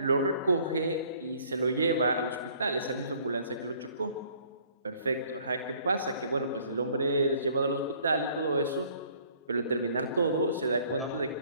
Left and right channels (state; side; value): inverted; both; correlation -0.58